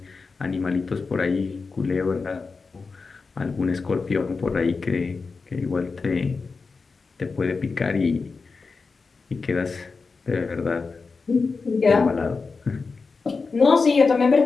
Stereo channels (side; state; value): right; quieter; 4.5 dB